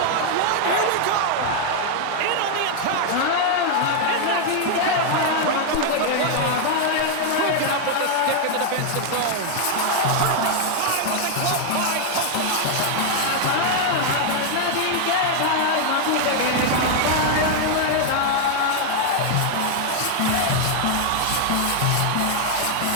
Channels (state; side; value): different; both; correlation 0.00